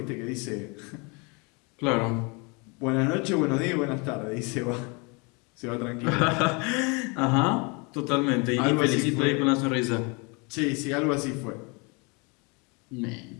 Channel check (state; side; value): quieter; right; 30.7 dB